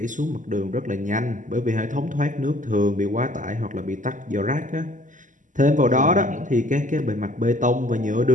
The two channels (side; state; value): left; late; 0.37 ms